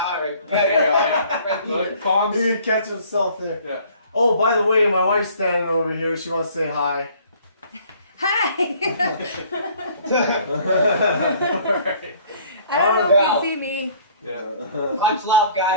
He would catch himself there. Yeah. Oh, by the way, my wife's standing over here. She wants to say hi. Hi! Right. I don't know if you see me. Yeah. Much love,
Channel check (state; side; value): inverted; both; correlation -0.56